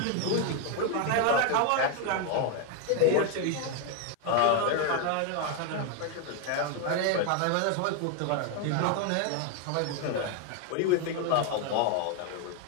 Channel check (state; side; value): different; both; correlation 0.01